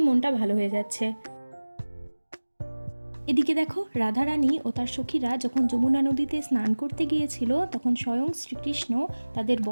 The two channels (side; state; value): both; inverted; correlation -1.00